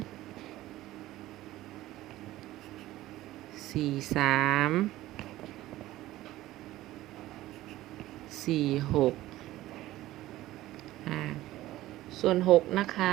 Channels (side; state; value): left; quieter; 15.9 dB